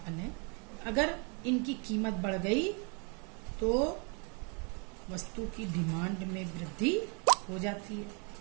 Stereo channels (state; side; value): quieter; left; 35.1 dB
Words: है। अगर इनकी कीमत बढ़ गई तो वस्तु की डिमांड में वृद्धि हो जाती है।